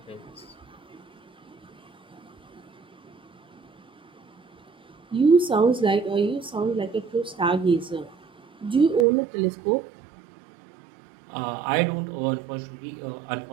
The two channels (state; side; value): drops out; left; at 9.1 s